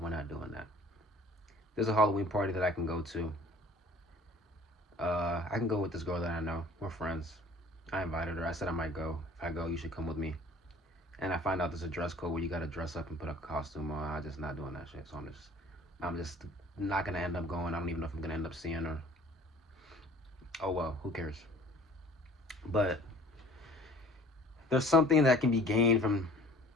We're not doing that. There's a Halloween party that I can go to. I can go with this girl that I know. We're friends. I invited her. I said I might go. If I go, you should come with me. And I find out there's a dress code where you gotta dress up and put a costume on. I'm just not doing that shit. So I'm just not gonna end up going. I don't even know if I'm gonna end up seeing her. Oh well, who cares? But there's something that can be gained from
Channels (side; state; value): both; normal; correlation 0.50